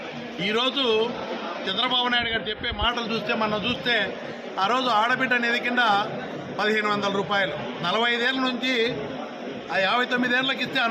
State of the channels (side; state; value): both; identical; correlation 1.00